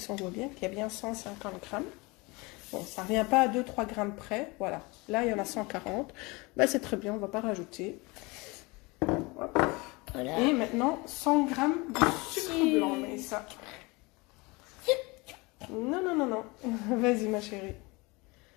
on voit bien qu'il y a bien 150 grammes. Bon, ça ne revient pas à 2-3 grammes près. Voilà, là il y en a 140. Bah, c'est très bien, on ne va pas rajouter. Hop. Voilà. Et maintenant 100 grammes de sucre blanc, mais ça. Non, non, non, non. Vas-y ma chérie.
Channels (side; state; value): right; quieter; 25.5 dB